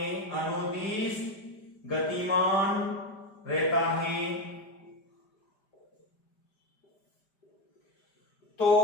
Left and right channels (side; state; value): right; late; 5.0 ms